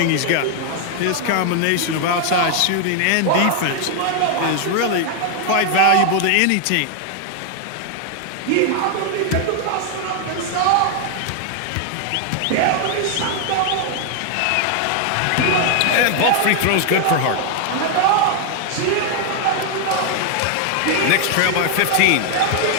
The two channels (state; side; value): different; both; correlation 0.00